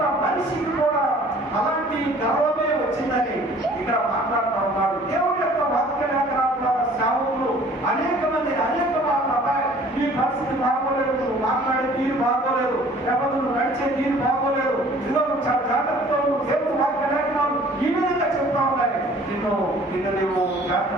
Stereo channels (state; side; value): normal; both; correlation 0.52